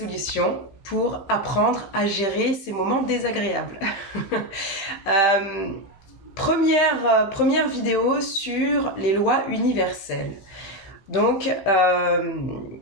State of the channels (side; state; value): right; late; 15 ms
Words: pour apprendre à gérer ces moments désagréables. Première vidéo sur les lois universelles. Donc,